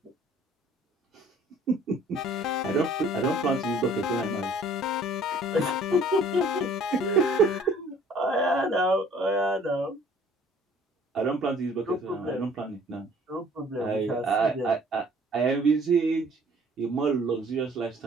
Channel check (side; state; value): both; normal; correlation 0.55